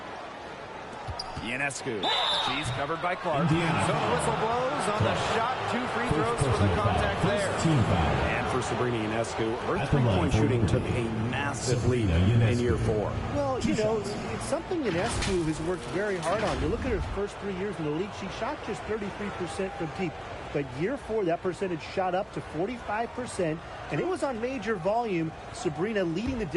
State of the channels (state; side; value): identical; both; correlation 1.00